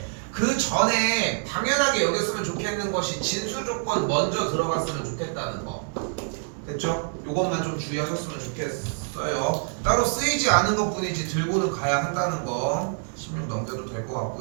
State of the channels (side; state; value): left; silent; digital silence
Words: 그 전에 당연하게 여겼으면 좋겠는 것이 진수 조건 먼저 들어갔으면 좋겠다는 거. 됐죠? 요것만 좀 주의하셨으면 좋겠어요. 따로 쓰이지 않은 것 뿐이지 들고는 가야 한다는 거. 16 넘겨도 될 것